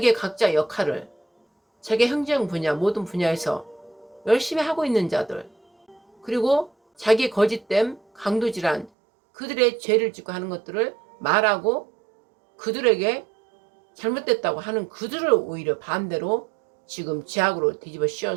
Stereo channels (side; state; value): left; drops out; at 8.9 s